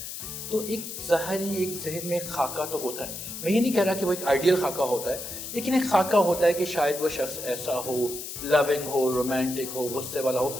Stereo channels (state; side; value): noise; left; hiss, 8 dB below the sound